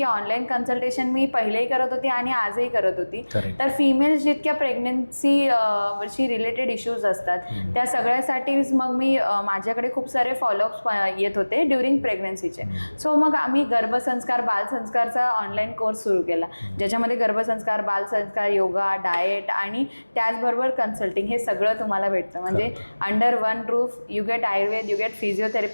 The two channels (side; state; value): both; inverted; correlation -1.00